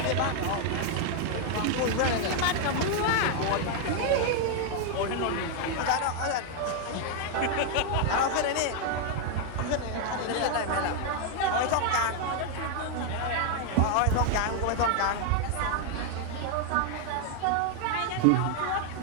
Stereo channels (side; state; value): both; different; correlation 0.01